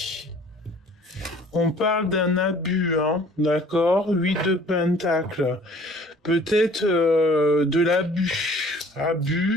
On parle d'un abus, hein, d'accord? 8 de pentacles. Peut-être de l'abus.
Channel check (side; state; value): both; normal; correlation 0.52